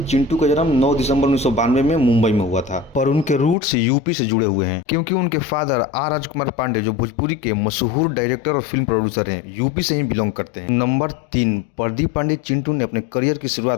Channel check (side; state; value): right; drops out; at 3.6 s